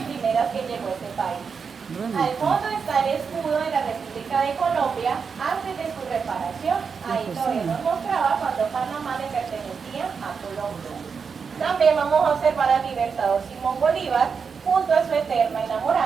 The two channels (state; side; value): quieter; left; 5.8 dB